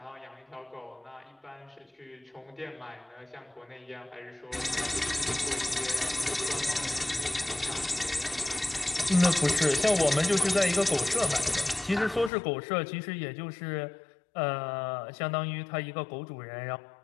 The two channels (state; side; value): drops out; right; at 12.3 s